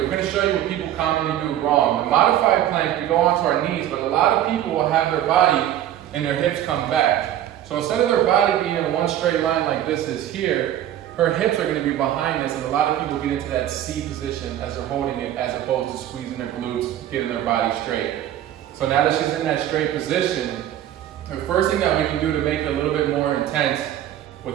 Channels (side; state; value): left; quieter; 11.9 dB